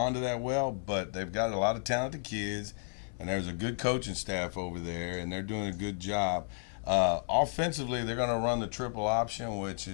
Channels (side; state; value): right; silent; 56 dB below the other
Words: to that well. But they've got a lot of talented kids, and there's a good coaching staff over there, and they're doing a good job. Offensively, they're going to run the triple option, which